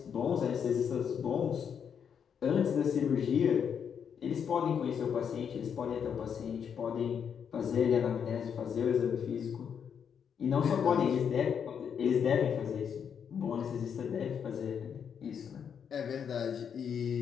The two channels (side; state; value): right; quieter; 7.5 dB